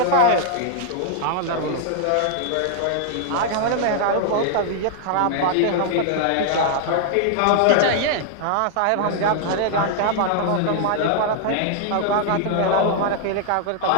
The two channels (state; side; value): different; both; correlation -0.01